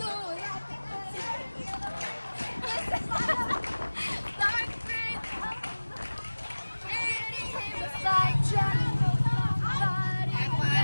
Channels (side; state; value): both; inverted; correlation -1.00